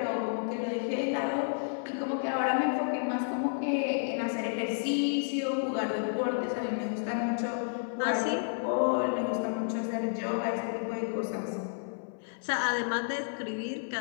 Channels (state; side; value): silent; right; 57 dB below the other